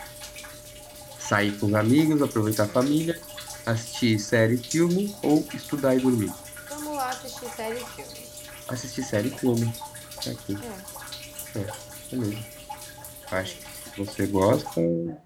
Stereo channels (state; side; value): identical; both; correlation 1.00